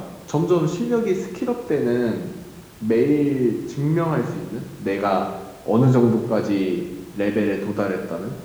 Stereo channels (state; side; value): identical; both; correlation 1.00